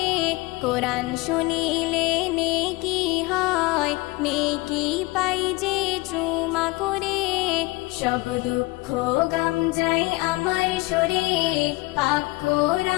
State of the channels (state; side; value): quieter; right; 22.5 dB